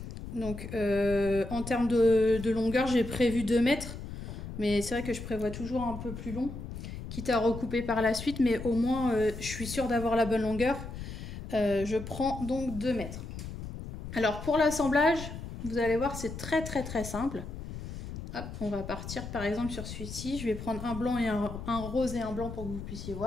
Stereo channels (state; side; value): noise; left; rumble, 9 dB below the sound